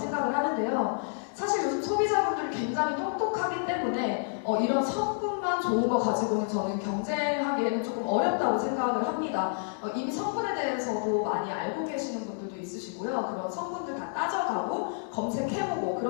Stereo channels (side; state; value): right; silent; digital silence